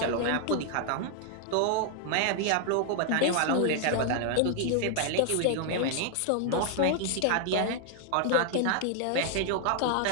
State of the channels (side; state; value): both; different; correlation 0.00